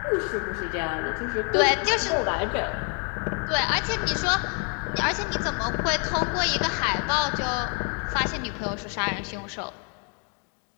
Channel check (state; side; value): quieter; right; 38.6 dB